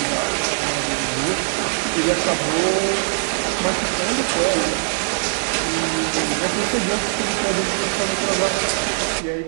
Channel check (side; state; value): left; silent; digital silence